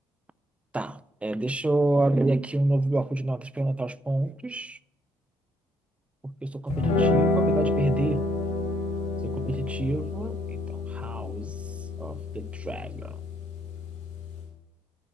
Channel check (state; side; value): normal; both; correlation 0.73